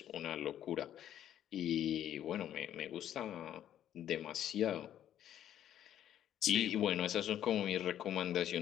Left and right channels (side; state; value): right; quieter; 11.0 dB